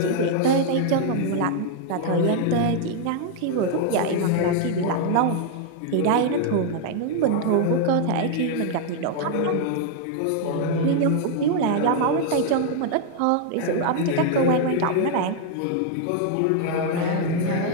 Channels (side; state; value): both; different; correlation 0.00